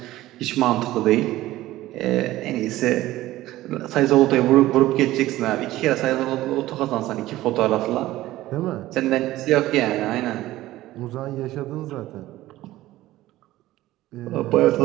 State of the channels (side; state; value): left; quieter; 16.0 dB